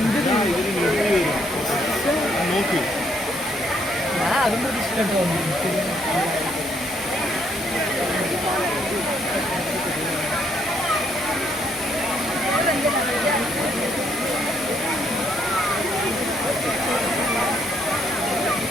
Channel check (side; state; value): both; normal; correlation 0.71